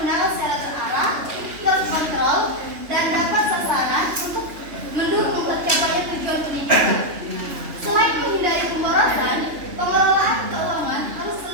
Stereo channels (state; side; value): late; left; 3.3 ms